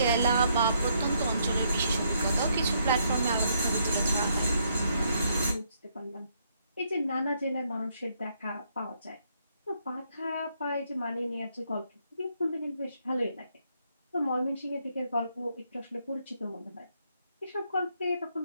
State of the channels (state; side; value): inverted; both; correlation -0.73